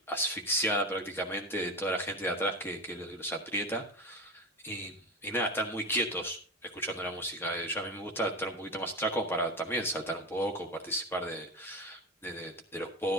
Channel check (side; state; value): both; normal; correlation 0.22